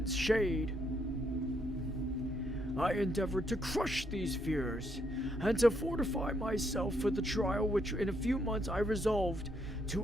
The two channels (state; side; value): normal; both; correlation 0.75